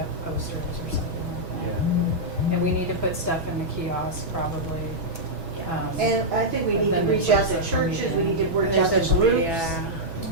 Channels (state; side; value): late; left; 6.1 ms